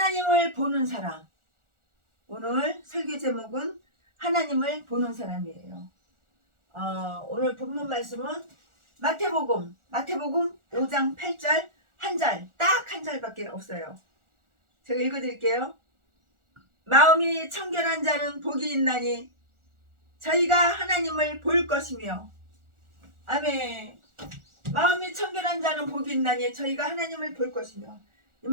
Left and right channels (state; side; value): late; left; 1.4 ms